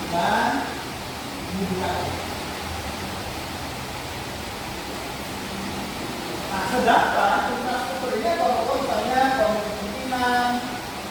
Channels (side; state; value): both; identical; correlation 1.00